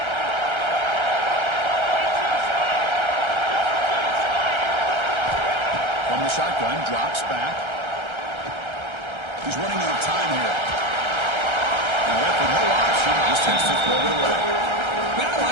From the shotgun, drops back. He's running out of time here. And left with no option, just has to throw it away. Man, I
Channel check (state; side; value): late; left; 1.3 ms